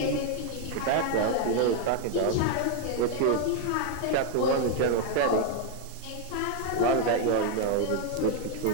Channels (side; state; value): both; different; correlation 0.00